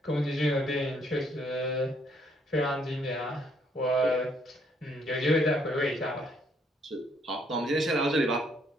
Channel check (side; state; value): both; normal; correlation 0.68